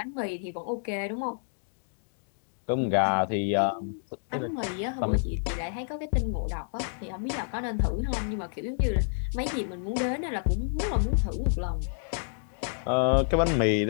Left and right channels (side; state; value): right; silent; digital silence